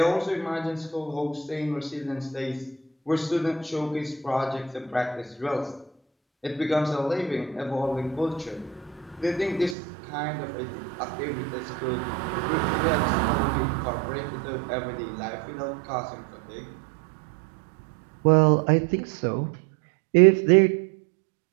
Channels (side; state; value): left; drops out; at 9.8 s